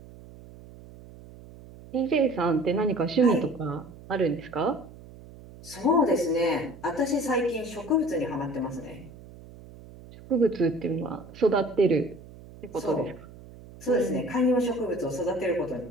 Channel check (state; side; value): noise; right; hum, 19 dB below the sound